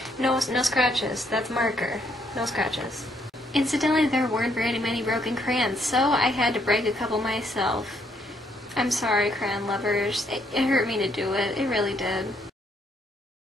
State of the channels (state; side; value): normal; both; correlation 0.71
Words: no scratches. That's marker. No scratches. Incidentally, there weren't very many broken crayons, so I had to break a couple myself. I'm sorry, crayon lovers. It hurt me to do it. It really did.